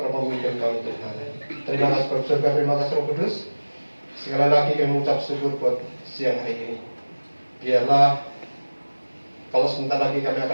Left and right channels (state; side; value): inverted; both; correlation -1.00